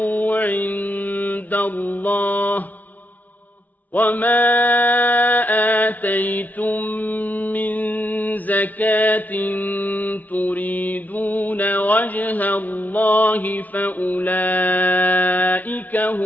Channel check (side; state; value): right; late; 0.077 ms